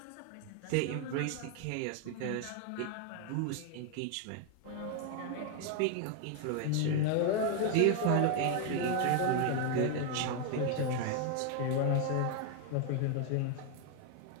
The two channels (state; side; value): different; both; correlation 0.01